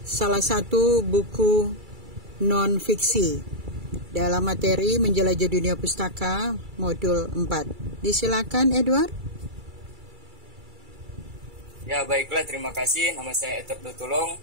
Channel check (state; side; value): late; left; 2.3 ms